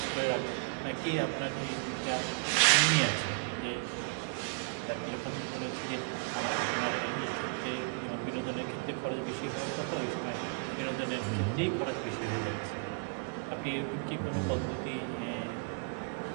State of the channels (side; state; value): left; quieter; 33.1 dB